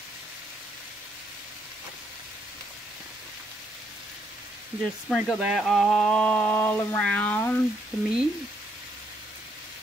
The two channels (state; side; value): normal; both; correlation 0.73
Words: Just sprinkle that all around the meat,